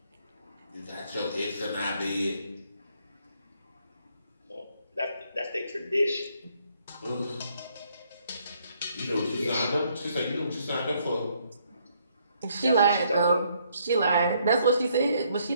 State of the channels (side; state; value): both; inverted; correlation -0.69